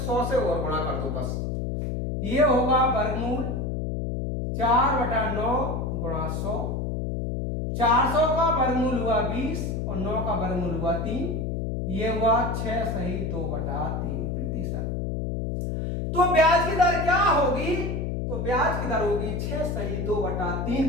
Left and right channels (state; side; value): noise; left; hum, 2 dB below the sound